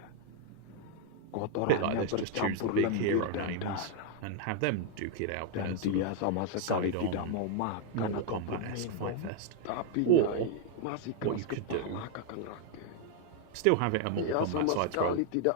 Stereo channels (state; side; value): different; both; correlation 0.00